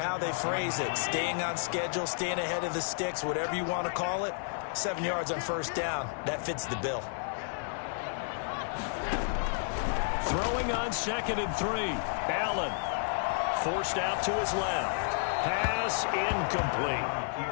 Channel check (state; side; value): silent; right; digital silence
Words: they phrase it, staying on schedule, staying ahead of the sticks, whatever you want to call it, 7 yards on 1st down. That fits the bill. Throwing on 2nd and 3. Allen forced out to his left. Pass incomplete.